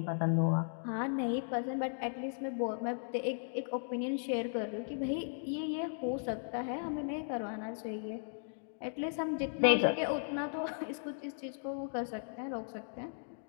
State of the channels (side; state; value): right; silent; digital silence